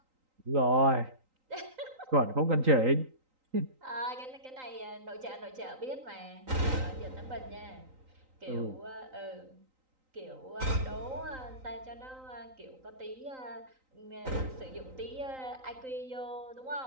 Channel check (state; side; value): late; left; 3.9 ms